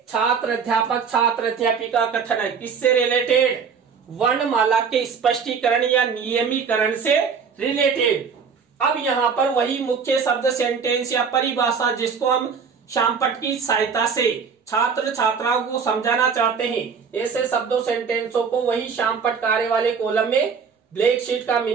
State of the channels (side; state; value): left; quieter; 6.0 dB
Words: छात्र अध्यापिका कथन है, किससे रिलेटेड, वर्णमाला के स्पष्टीकरण या नियमीकरण से रिलेटेड। अब यहाँ पर वही मुख्य शब्द, सेंटेंस या परिभाषा जिसको हम शामपट्ट की सहायता से छात्र छात्राओं को समझाना चाहते हैं, ऐसे शब्दों सेंटेंसों को वही शामपट्ट कार्य वाले कॉलम में ब्लैक शीट का